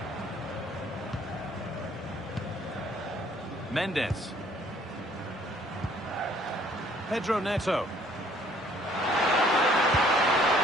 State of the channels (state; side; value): normal; both; correlation 0.60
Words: Mendes. Pedro Neto.